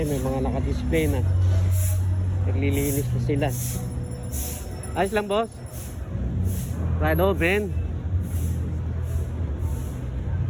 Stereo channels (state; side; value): identical; both; correlation 1.00